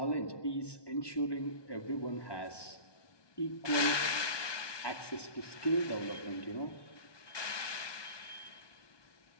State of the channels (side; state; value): right; late; 1.2 ms